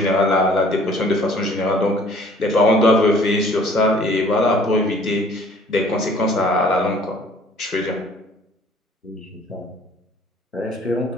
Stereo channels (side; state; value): both; normal; correlation 0.55